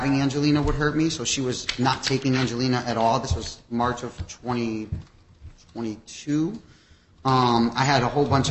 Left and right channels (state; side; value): identical; both; correlation 1.00